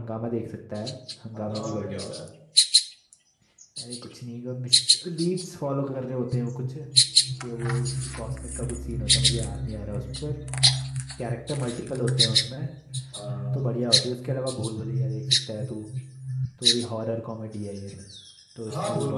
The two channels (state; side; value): identical; both; correlation 1.00